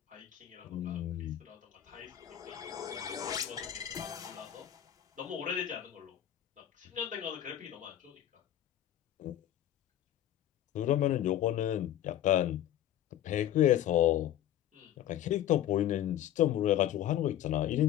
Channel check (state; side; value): quieter; right; 11.7 dB